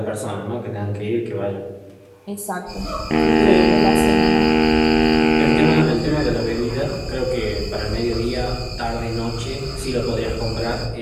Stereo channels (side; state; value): both; identical; correlation 1.00